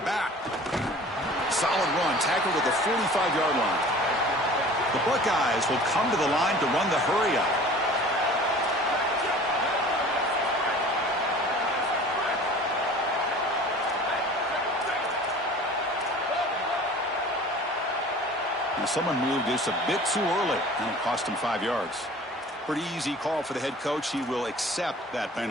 Solid run, tackled at the 45-yard line. The Buckeyes will come to the line to run the hurry-up. And someone moved just a bit too early, and it cost him 5 yards. Pretty easy call for the head coach. He will accept that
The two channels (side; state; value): both; normal; correlation 0.44